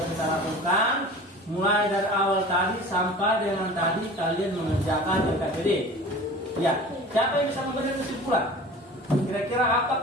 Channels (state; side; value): normal; both; correlation 0.40